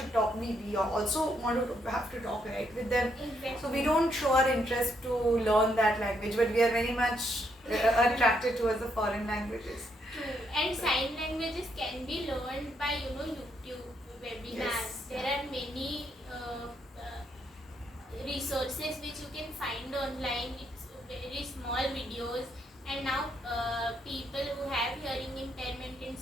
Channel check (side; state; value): both; normal; correlation 0.75